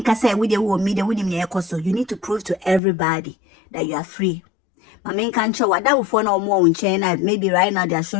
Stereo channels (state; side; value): drops out; right; at 2.8 s